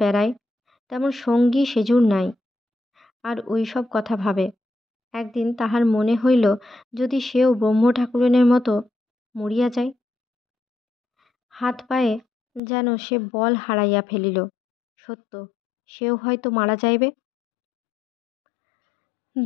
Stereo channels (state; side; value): drops out; right; at 12.6 s